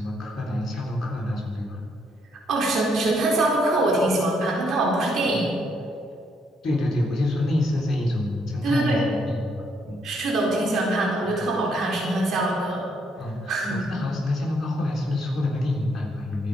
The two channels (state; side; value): normal; both; correlation 0.73